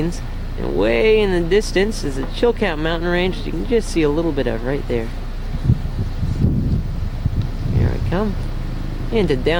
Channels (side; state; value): both; identical; correlation 1.00